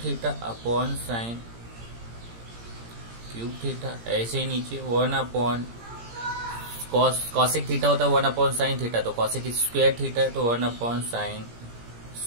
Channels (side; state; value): left; late; 17 ms